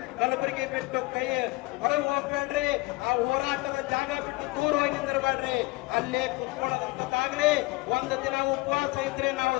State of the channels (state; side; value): quieter; right; 22.5 dB